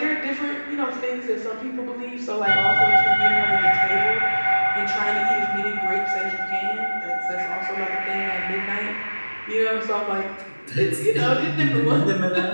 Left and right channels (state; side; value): inverted; both; correlation -1.00